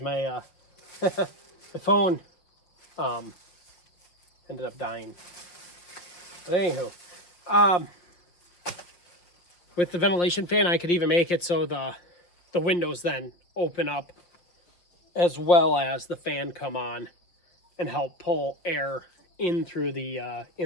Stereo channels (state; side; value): late; right; 5.7 ms